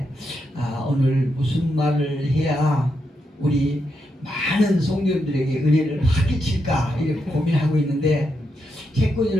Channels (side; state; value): both; normal; correlation 0.83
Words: 오늘 무슨 말을 해야 우리 많은 성도님들에게 은혜를 확 끼칠까 이렇게 고민하고 있는데